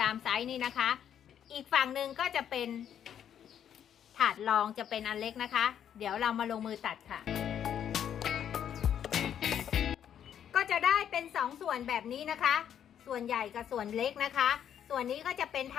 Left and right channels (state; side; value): quieter; right; 9.4 dB